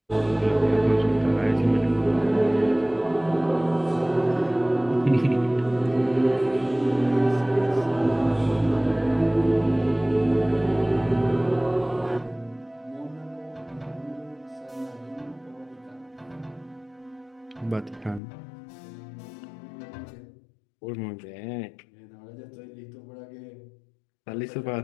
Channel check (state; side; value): drops out; right; at 18.2 s